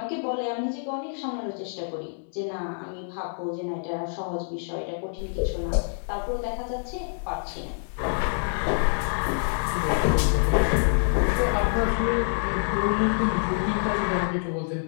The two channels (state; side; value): silent; right; digital silence